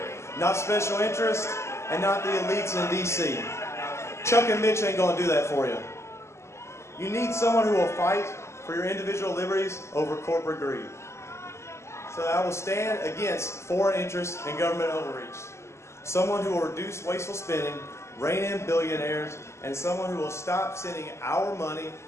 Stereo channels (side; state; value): right; late; 0.13 ms